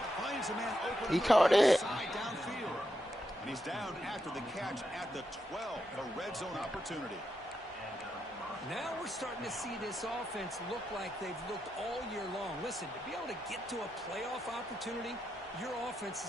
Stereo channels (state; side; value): normal; both; correlation 0.84